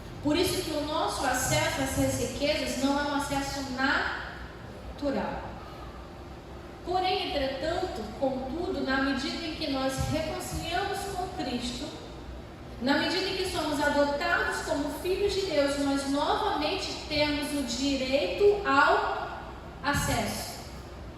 Por isso que o nosso acesso a essas riquezas não é um acesso natural. Porém, entretanto, contudo, na medida em que nós reconciliamos com Cristo, na medida em que somos adotados como filhos de Deus, nós novamente temos o direito ao acesso.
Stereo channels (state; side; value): identical; both; correlation 1.00